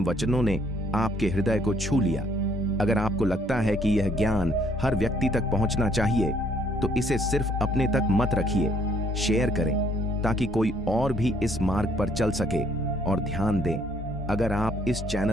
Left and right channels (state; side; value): normal; both; correlation 0.65